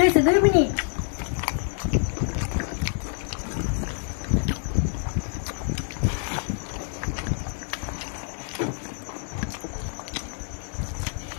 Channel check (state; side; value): silent; right; 60 dB below the other